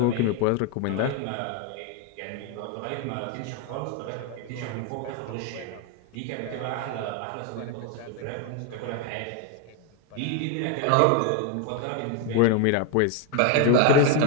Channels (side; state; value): both; different; correlation 0.01